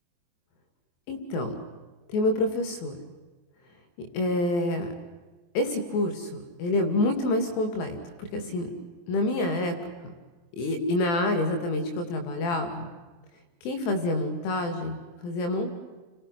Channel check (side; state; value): right; late; 23 ms